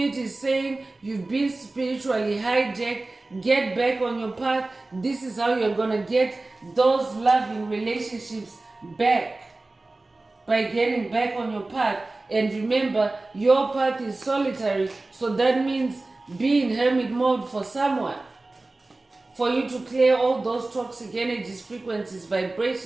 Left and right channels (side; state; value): left; quieter; 3.1 dB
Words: is saying you've been spiritually hijacked. Get back on your path. This is how you're going to get those loving relationships back, by getting back on your path. And remember, your path is solitary, so that means be in hermit mode for someone, for you to clear all those toxic energies, frequencies,